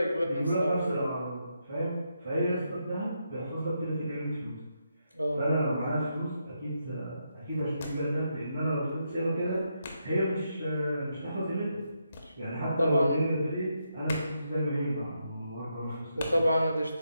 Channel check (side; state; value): both; inverted; correlation -0.81